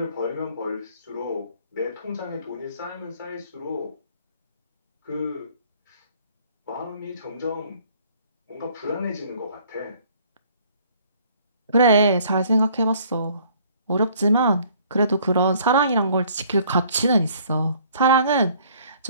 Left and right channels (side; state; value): both; inverted; correlation -0.58